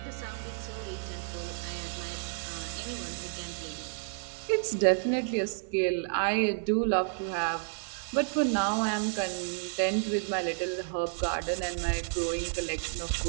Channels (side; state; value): left; silent; digital silence